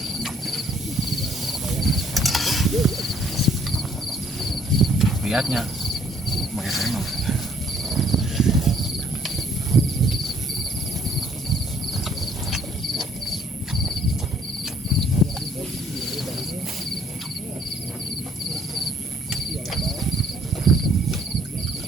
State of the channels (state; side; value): normal; both; correlation 0.63